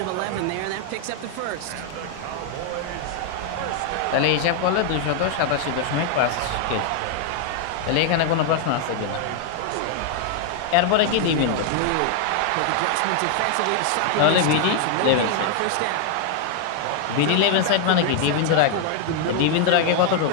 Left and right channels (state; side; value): different; both; correlation 0.00